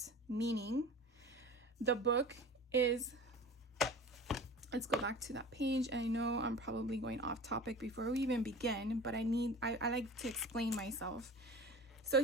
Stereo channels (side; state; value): both; normal; correlation 0.38